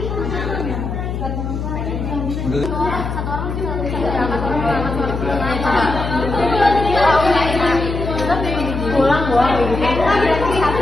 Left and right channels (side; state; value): left; noise; hum, 4 dB below the sound